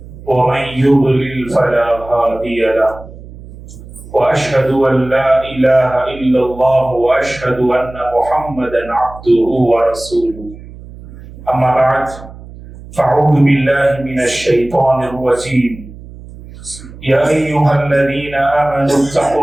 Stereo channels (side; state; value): right; noise; hum, 17 dB below the sound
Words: ومن يضلل فلا هادي له وأشهد أن لا إله إلا الله وأشهد أن محمدا عبده ورسوله أما بعد فأعوذ بالله من الشيطان الرجيم يا أيها الذين آمنوا